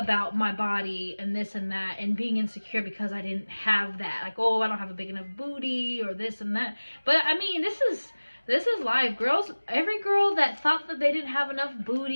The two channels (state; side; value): inverted; both; correlation -1.00